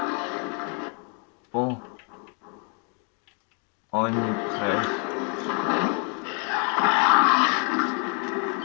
Bon, on est prêt.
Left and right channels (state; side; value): quieter; right; 37.9 dB